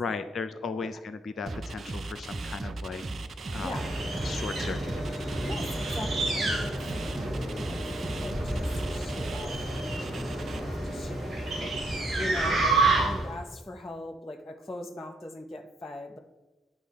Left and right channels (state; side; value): normal; both; correlation 0.73